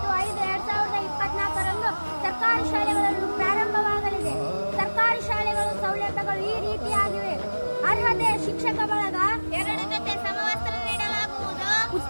ಸರ್ಕಾರಿ ಶಾಲೆಗಳನ್ನು ಪ್ರಾರಂಭವಾಗಲಿದೆ. ಸರ್ಕಾರಿ ಶಾಲೆಗಳು ಸೌಲಭ್ಯಗಳು ಈ ರೀತಿಯಾಗಿವೆ. ಅರ್ಹತೆ: ಶಿಕ್ಷಕ ಬಳಗ, 2 ಜೊತೆ ಸಮವಸ್ತ್ರ ನೀಡಲಾಗುವುದು,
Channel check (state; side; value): inverted; both; correlation -1.00